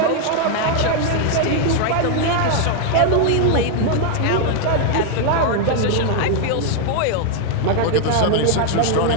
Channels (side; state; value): both; different; correlation 0.00